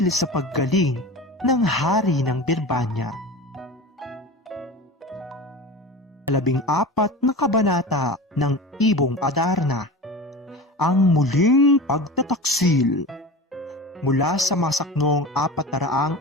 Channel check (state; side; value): normal; both; correlation 0.32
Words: sa paggaling ng hari ng Birbanya. 14 na kabanata ng Ibong Adarna. Ang muling pagtataksil. Mula sa masaknong